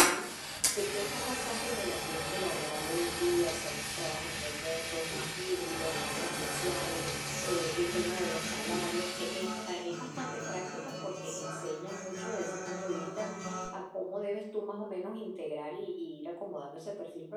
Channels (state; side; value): identical; both; correlation 1.00